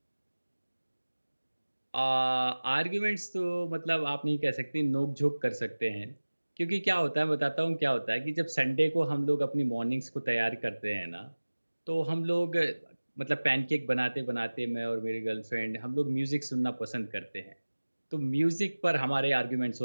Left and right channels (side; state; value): both; inverted; correlation -1.00